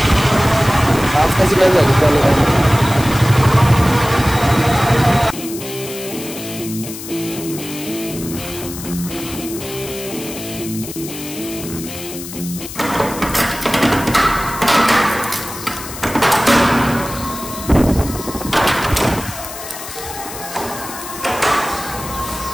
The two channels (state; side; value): noise; left; hiss, 11 dB below the sound